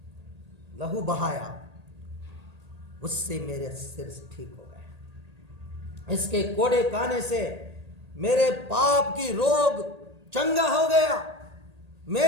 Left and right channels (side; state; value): left; late; 1.8 ms